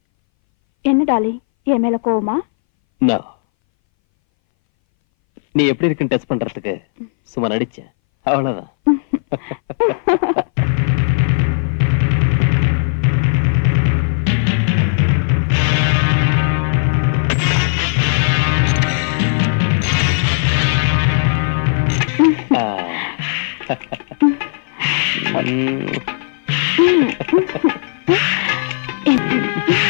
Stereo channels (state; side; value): silent; right; 62 dB below the other